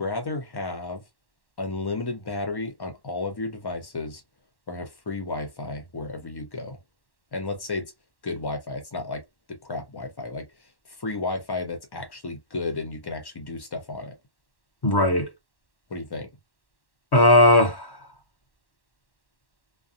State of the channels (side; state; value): right; late; 1.1 ms